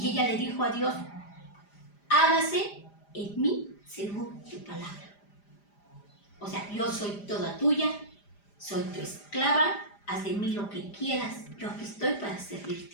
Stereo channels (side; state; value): right; late; 5.0 ms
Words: ella le dijo a Dios, hágase en mí según tu palabra. O sea, yo soy toda tuya, soy tu esclava, haz de mí lo que quieras, yo aquí estoy para